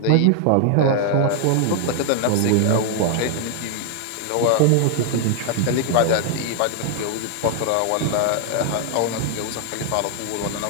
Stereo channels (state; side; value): different; both; correlation 0.00